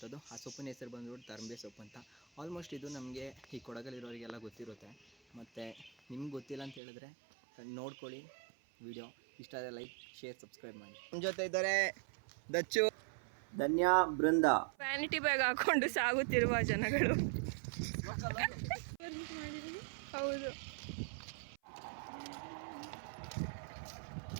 ಆ ಸೊಪ್ಪಿನ ಹೆಸರು ಬಂದ್ಬಿಟ್ಟು ತರಂಬೆ ಸೊಪ್ಪು ಅಂತ. ಆಲ್ಮೋಸ್ಟ್ ಇದು ನಮಗೆ ಈ ಕೊಡಗಲ್ಲಿರೋರಿಗೆಲ್ಲ ಗೊತ್ತಿರುತ್ತೆ. ಮತ್ತು ನಿಮ್ಗೆ ಗೊತ್ತಿಲ್ಲ ಅಂತ ಹೇಳಿದ್ರೆ ನೋಡ್ಕೊಳ್ಳಿ ವಿಡಿಯೋ. ಇಷ್ಟ ಆದರೆ ಲೈಕ್, ಶೇರ್, ಸಬ್ಸ್ಕ್ರೈಬ್ ಮಾಡಿ. ನಮ್ಮ ಜೊತೆ ಇದ್ದಾರೆ ದಚ್ಚು, ಧನ್ಯ, ಬೃಂದ. ವ್ಯಾನಿಟಿ ಬ್ಯಾಗ್ ಹಾಕೊಂಡು ಸಾಗುತ್ತಿರುವ ಜನಗಳು. ಹೌದು,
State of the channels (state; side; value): drops out; left; at 6.8 s